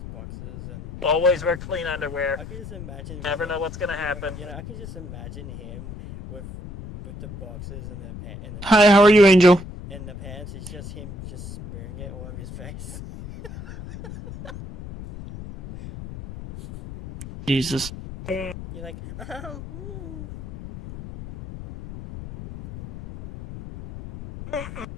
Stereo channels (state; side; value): noise; left; rumble, 11 dB below the sound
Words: boxes and. Always wear clean underwear. I could just imagine. Never know what's gonna happen. You know, I could just imagine him with the boxes and the Hi, how are you, Angel? and the pants. It's just him just smearing it all over his face. Jesus. You're like,